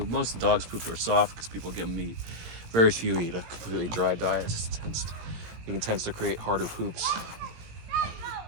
Most of the dogs' poop are soft because people give them meat. Very few eat a completely dry diet. It tends to create harder poops.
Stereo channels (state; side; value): late; left; 17 ms